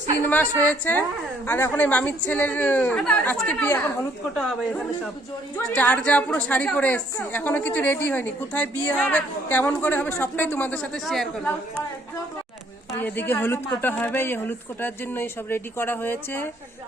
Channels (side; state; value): both; normal; correlation 0.64